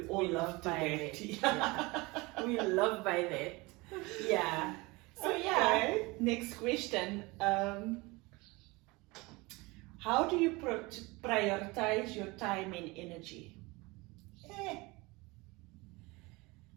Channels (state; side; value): quieter; left; 24.0 dB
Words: all love by that. Yeah. We love by that. Yeah. So okay. Next question. How do you prioritize your time and energy? I